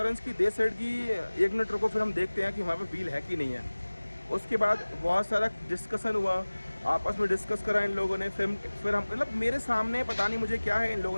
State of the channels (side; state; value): both; inverted; correlation -1.00